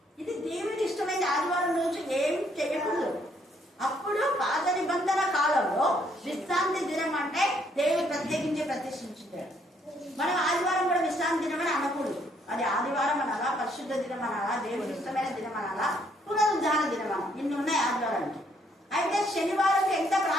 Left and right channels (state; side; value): normal; both; correlation 0.69